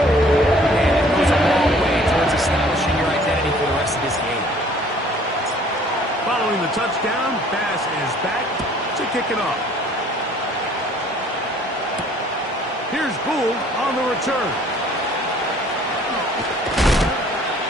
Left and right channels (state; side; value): normal; both; correlation 0.55